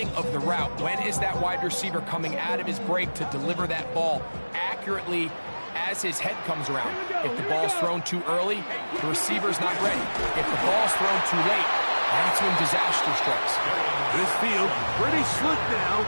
of the route. When is that wide receiver coming out of his break to deliver that ball accurately as his head comes around? If the ball's thrown too early, the receiver's not ready. If the ball's thrown too late, that's when disaster strikes. This field pretty slick now.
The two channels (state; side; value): inverted; both; correlation -1.00